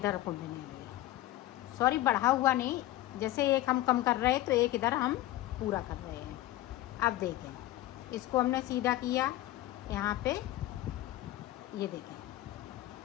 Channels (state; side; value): quieter; right; 15.6 dB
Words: को बुनेंगे। सॉरी बढ़ा हुआ नहीं, जैसे 1 हम कम कर रहे हैं तो 1 इधर हम पूरा कर रहे हैं। अब देखें इसको हमने सीधा किया, यहाँ पे ये देखें